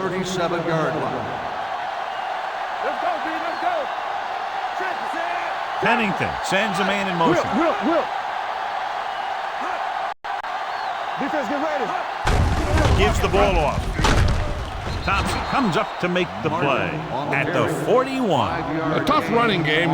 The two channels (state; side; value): identical; both; correlation 1.00